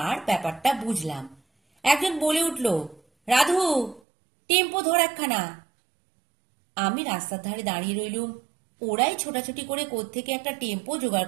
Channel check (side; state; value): left; drops out; at 4.0 s